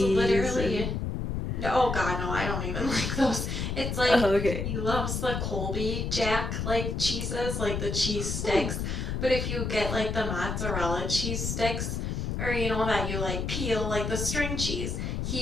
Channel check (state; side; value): noise; left; rumble, 2 dB below the sound